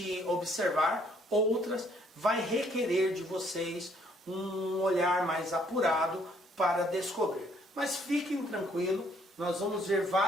observar, outras vai requerer de vocês um olhar mais apurado para descobrir. Mas fiquem tranquilos, nós vamos ver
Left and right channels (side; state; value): both; normal; correlation 0.65